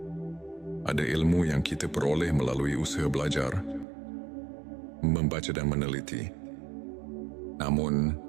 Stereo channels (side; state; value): left; drops out; at 3.9 s